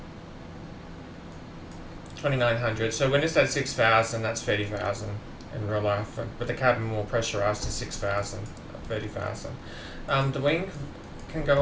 2900. So when it's at 6,000, that's 30,000 in real life. But the cabin more pressurized to 6,000, 30,000. The wing can go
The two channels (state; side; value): identical; both; correlation 1.00